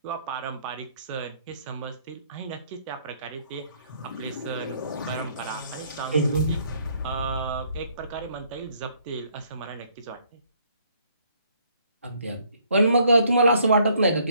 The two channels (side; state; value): both; inverted; correlation -0.66